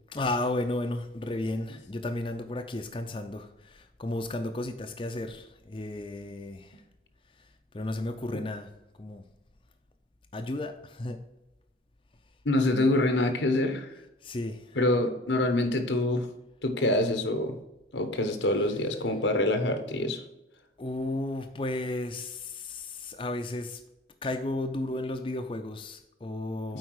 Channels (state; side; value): normal; both; correlation 0.45